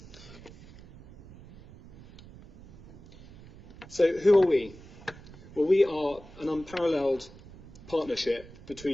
So who are we? Well, we are an unparalleled partnership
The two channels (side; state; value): right; noise; rumble, 19 dB below the sound